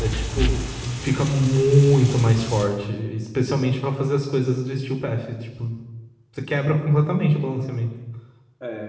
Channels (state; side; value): identical; both; correlation 1.00